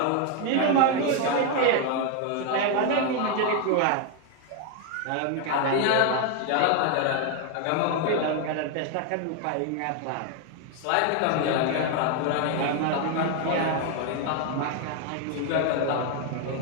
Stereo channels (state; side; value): different; both; correlation 0.01